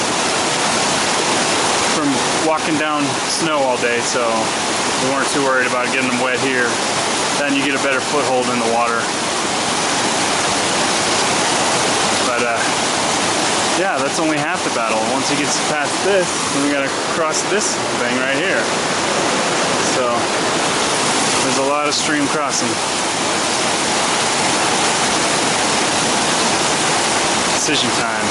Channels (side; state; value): both; identical; correlation 1.00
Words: walking down snow all day, so we weren't too worried about getting them wet here. Then you get a better foothold in the water. But yeah, that's only half the battle. Once he gets past this, then we gotta cross this thing right here. So there's a lot of stream crossing. Decision